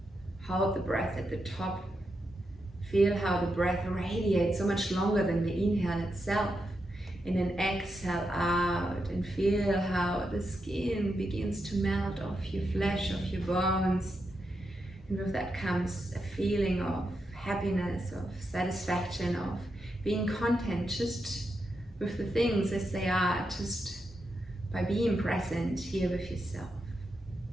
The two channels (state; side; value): normal; both; correlation 0.85